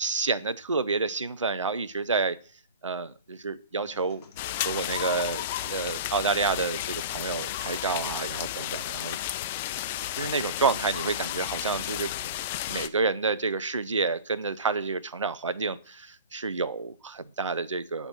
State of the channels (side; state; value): both; inverted; correlation -0.34